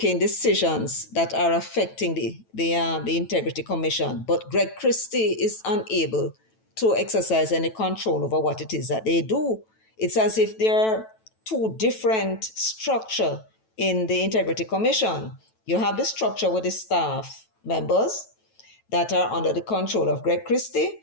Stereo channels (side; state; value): right; late; 9.1 ms